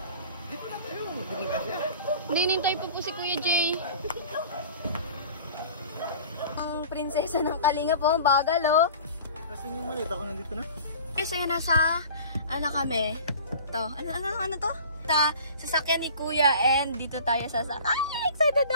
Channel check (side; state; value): both; inverted; correlation -0.43